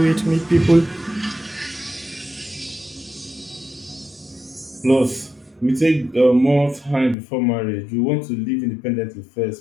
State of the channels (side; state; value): right; drops out; at 7.2 s